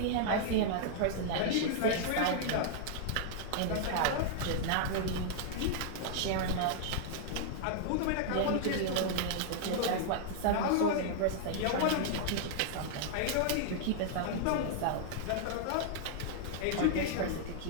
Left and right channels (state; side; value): different; both; correlation -0.01